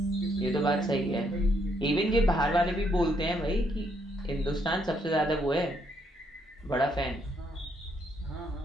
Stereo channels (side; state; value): both; normal; correlation 0.73